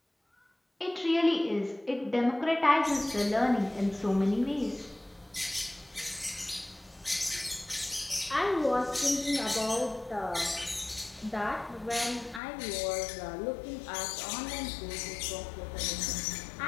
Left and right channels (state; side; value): drops out; right; at 12.4 s